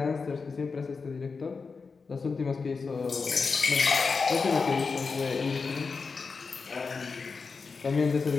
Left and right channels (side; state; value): right; quieter; 4.8 dB